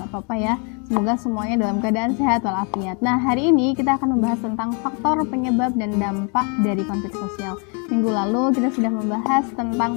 apa-apa ya. Semoga semuanya dalam keadaan sehat walafiat. Nah, hari ini kita akan membahas tentang faktor penyebab dan dampak dari konflik sosial. Minggu lalu kita sudah membahas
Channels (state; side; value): quieter; right; 36.4 dB